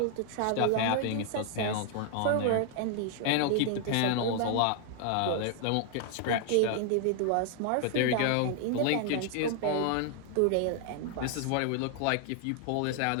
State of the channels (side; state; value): both; different; correlation 0.00